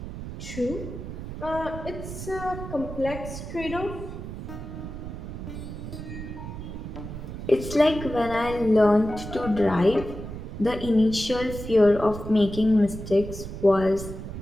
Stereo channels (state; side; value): noise; right; rumble, 9 dB below the sound